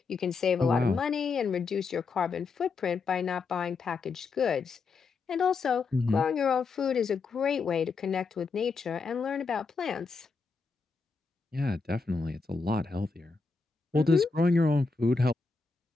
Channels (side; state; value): right; quieter; 4.5 dB